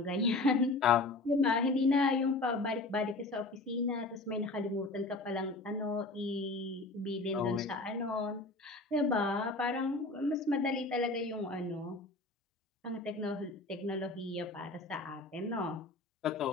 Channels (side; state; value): right; quieter; 3.2 dB